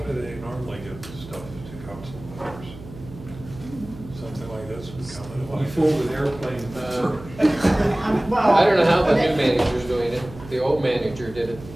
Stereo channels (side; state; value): right; noise; hum, 16 dB below the sound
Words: they normally get stuff to council members? Something like this would come in. You fold an airplane. Well. I don't know how the new manager's doing it. The old manager did it